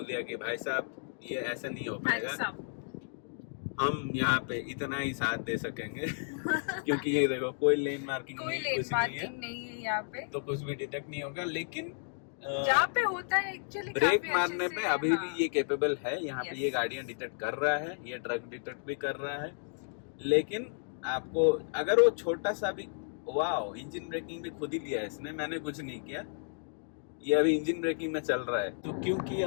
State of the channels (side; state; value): right; silent; digital silence